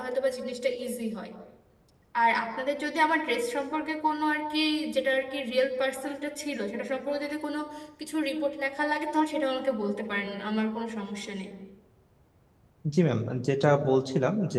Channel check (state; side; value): identical; both; correlation 1.00